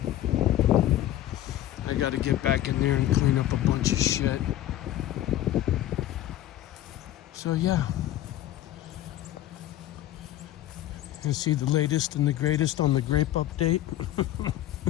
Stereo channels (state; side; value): quieter; right; 13.4 dB